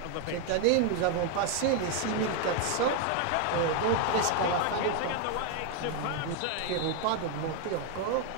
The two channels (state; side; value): different; both; correlation 0.01